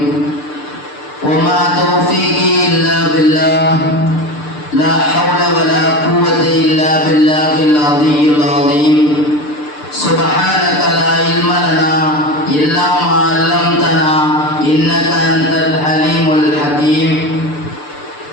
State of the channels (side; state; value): right; late; 6.7 ms